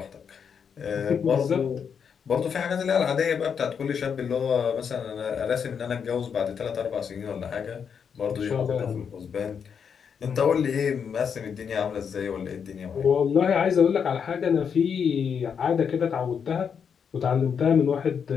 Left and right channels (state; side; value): quieter; right; 7.0 dB